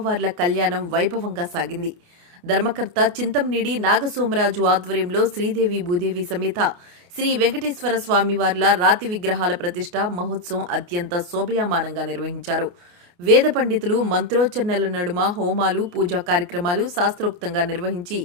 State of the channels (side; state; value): left; late; 28 ms